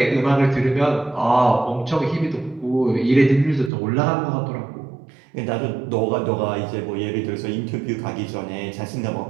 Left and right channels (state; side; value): drops out; left; at 3.7 s